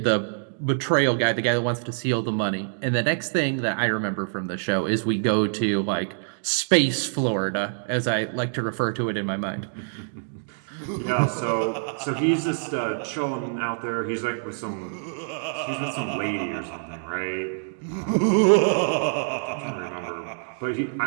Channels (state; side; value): silent; left; digital silence